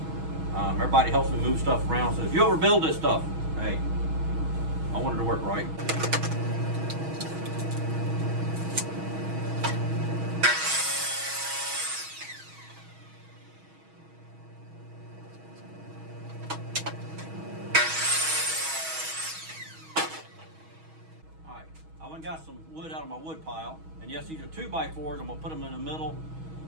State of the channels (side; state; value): left; late; 6.2 ms